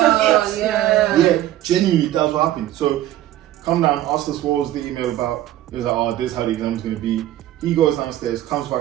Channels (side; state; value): left; quieter; 13.6 dB